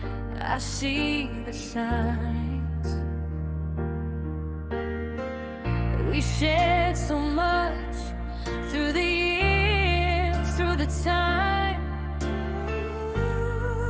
I see the signs. We shared so much through the years, through the time.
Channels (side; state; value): both; identical; correlation 1.00